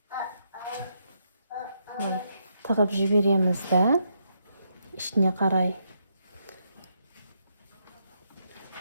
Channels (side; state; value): both; inverted; correlation -0.79